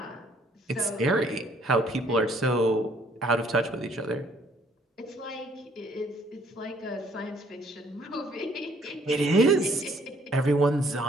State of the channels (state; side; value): normal; both; correlation 0.63